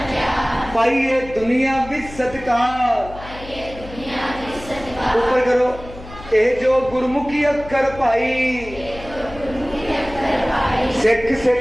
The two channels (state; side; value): noise; left; hum, 16 dB below the sound